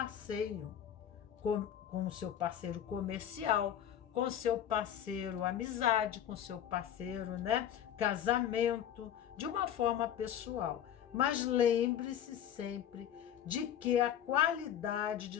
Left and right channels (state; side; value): quieter; right; 10.0 dB